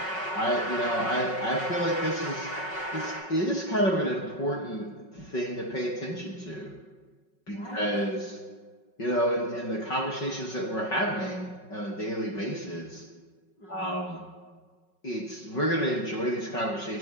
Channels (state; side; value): late; right; 5.4 ms